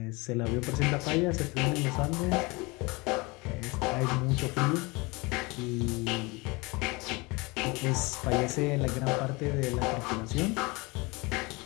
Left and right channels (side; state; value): right; quieter; 25.7 dB